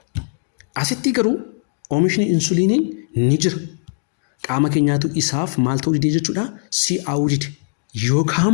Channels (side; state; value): right; silent; digital silence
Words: Asitti garuu oomishni insuliinii ni jira. Qaama keenyaatu isaaf maal ta'uu didee jechuudha? Si'aawuu dide. Yookaan